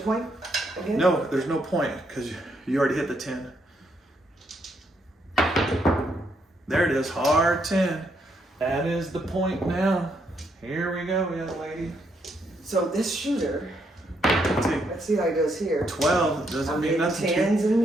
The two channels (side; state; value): both; normal; correlation 0.75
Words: point again? No, there's no point because you already hit the 10. There it is, hard 10. That is the point now. Here we go, young lady. So this shooter, Let's let's see how it goes here. 12 doesn't I'm mean getting nothing. 10s and